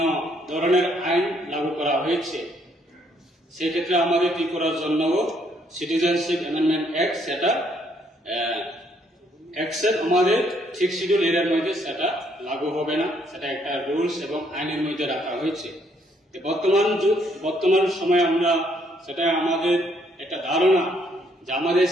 ধরনের আইন লাগু করা হয়েছে, সেক্ষেত্রে আমাদের ত্রিপুরার জন্য সিটিজেনশিপ অ্যামেন্ডমেন্ট অ্যাক্ট সেটা অ্যাকসেপ্ট আমাদের 6 শিডিউল এরিয়ার মধ্যে সেটা লাগু হবে না, সেটা একটা রুলস এবং আইনের মধ্যে রাখা হয়েছে। বর্তমান সময়ে আমরা সেটা আমাদের একটা ধারণা যে আমাদের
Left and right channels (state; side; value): normal; both; correlation 0.69